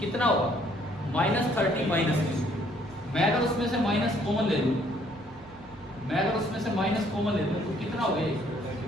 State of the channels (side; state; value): right; noise; hum, 24 dB below the sound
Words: कितना होगा? -30 माइनस Q। मैं अगर उसमें से माइनस कॉमन ले लूँ, तो कितना हो गया?